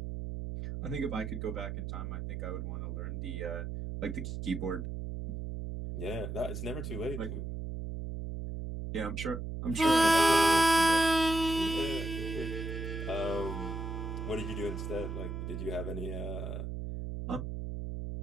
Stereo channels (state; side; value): noise; right; hum, 5 dB below the sound